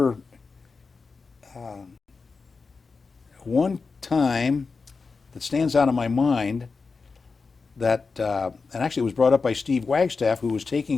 one time that stands out in my mind that, and actually it was brought up by Steve Wagstaff, who was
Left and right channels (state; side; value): quieter; right; 4.5 dB